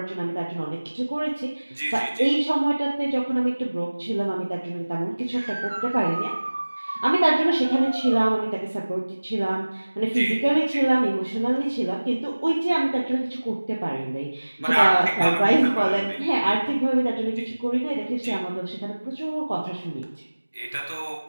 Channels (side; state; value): both; inverted; correlation -1.00